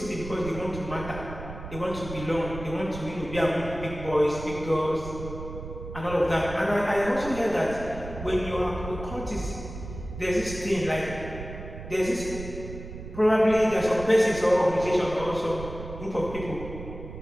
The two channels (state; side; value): noise; right; rumble, 11 dB below the sound